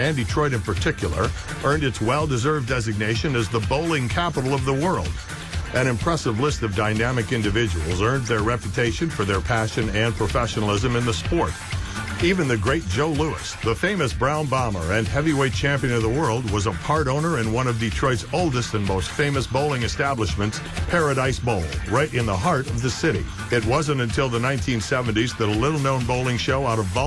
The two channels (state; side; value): identical; both; correlation 1.00